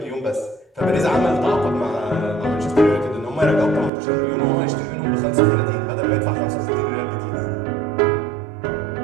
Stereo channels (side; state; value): left; drops out; at 3.9 s